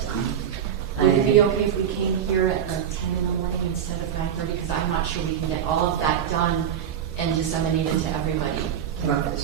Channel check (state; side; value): quieter; left; 9.0 dB